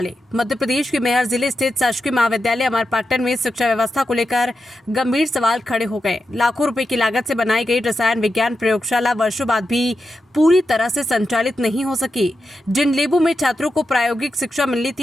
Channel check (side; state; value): both; normal; correlation 0.89